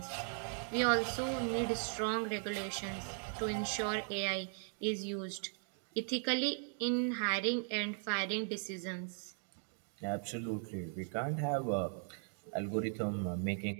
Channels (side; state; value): left; silent; 52 dB below the other